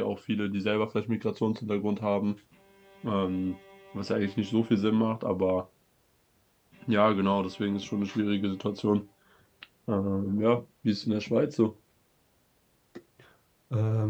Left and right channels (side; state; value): both; identical; correlation 1.00